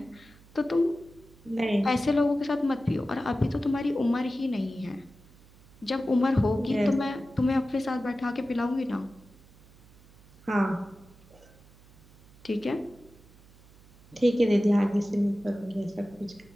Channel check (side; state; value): right; noise; hum, 26 dB below the sound